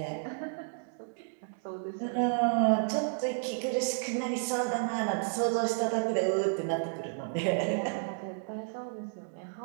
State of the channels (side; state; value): left; silent; digital silence